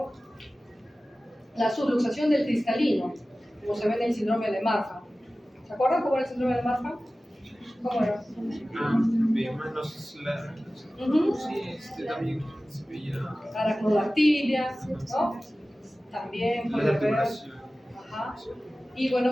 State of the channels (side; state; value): both; normal; correlation 0.96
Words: La subluxación del cristalino, como se ve en el síndrome de Marfan. ¿Se acuerdan cómo era el síndrome de Marfan? ¿Cómo era? Veíamos los sí, también se veía Aracnodactilia, ¿no? También la puede haber. articulación. Ajá. Y